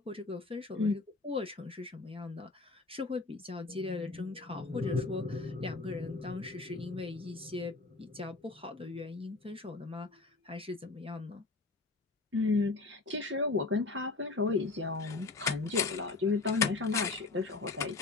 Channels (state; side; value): quieter; right; 3.7 dB